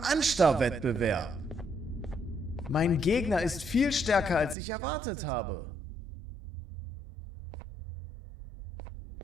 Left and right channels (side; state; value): left; drops out; at 4.5 s